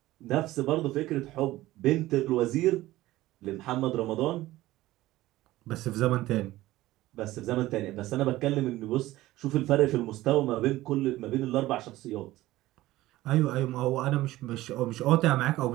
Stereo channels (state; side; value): quieter; left; 16.8 dB